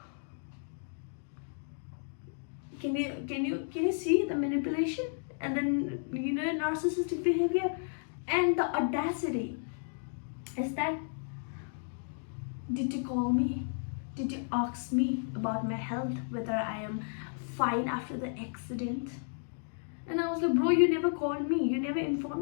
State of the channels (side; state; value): right; silent; digital silence